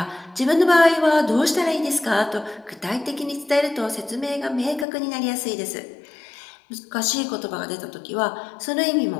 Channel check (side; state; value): right; drops out; at 4.9 s